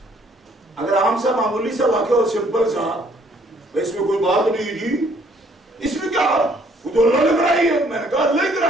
اگر عام سا معمولی سا واقعہ اور سمپل سا، اس میں کوئی بات نہیں جی، اس میں کیا وہ تو اللہ نے کرائی ہے. میں نے کہا اللہ نے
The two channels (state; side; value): normal; both; correlation 0.63